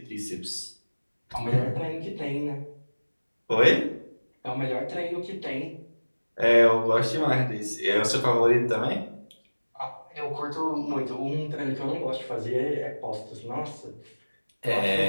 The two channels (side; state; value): both; inverted; correlation -1.00